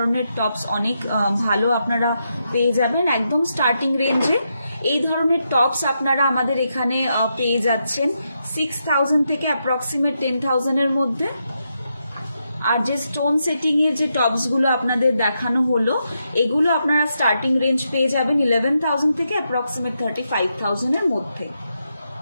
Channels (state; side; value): inverted; both; correlation -0.83